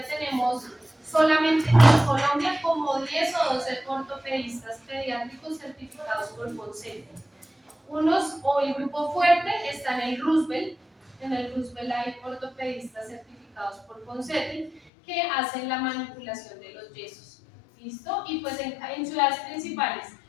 tenemos solamente en Colombia como 10 o 12 ortopedistas pediátricos certificados por Ponseti. O el grupo fuerte está en el Roosevelt. En el Roosevelt hay ortopedistas certificados por Ponseti que hacen la manipulación de los yesos. ¿Listo? Y pues en ciudades principales,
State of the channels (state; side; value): drops out; right; at 14.8 s